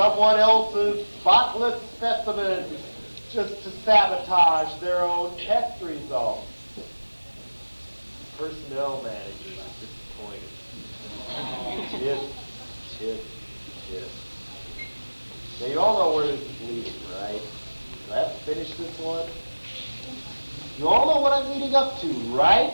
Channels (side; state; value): both; inverted; correlation -1.00